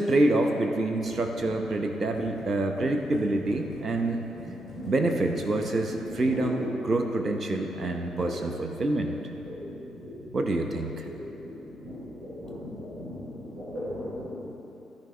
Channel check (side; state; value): both; normal; correlation 0.82